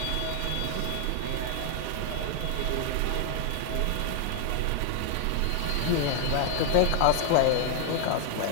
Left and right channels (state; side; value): different; both; correlation 0.00